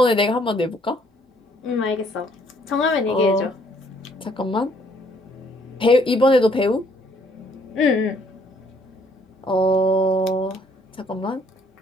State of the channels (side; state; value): both; normal; correlation 0.64